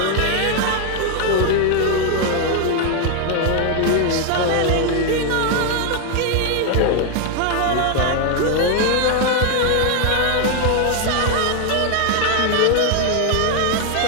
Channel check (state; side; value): different; both; correlation 0.01